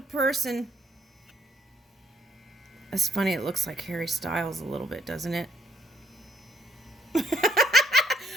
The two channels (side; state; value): both; normal; correlation 0.67